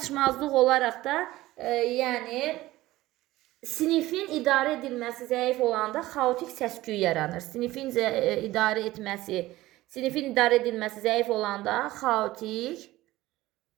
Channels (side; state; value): left; quieter; 17.2 dB